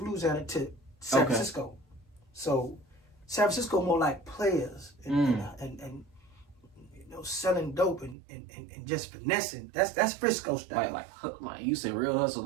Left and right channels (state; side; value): drops out; left; at 8.2 s